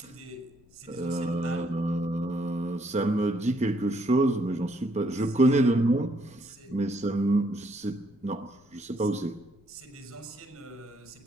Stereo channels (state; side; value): noise; left; rumble, 30 dB below the sound